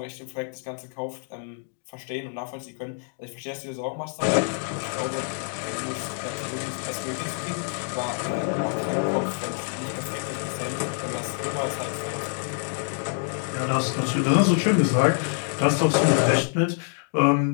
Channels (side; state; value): right; silent; 56 dB below the other